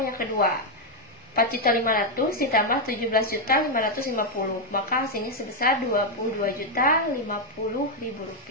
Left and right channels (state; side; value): normal; both; correlation 0.02